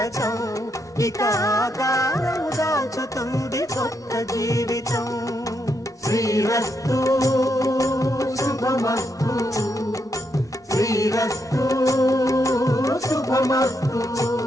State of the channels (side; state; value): both; normal; correlation 0.79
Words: ఇక ఆకారం దాచుతుంది కొత్త జీవితం శ్రీరస్తు శుభమస్తు శ్రీరస్తు శుభమస్తు